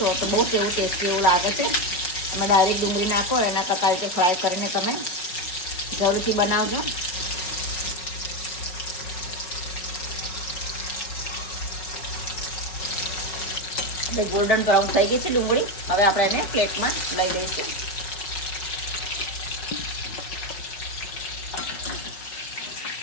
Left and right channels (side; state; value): right; late; 5.4 ms